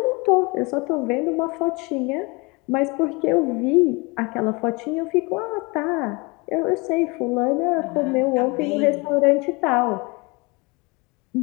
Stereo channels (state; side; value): quieter; right; 26.8 dB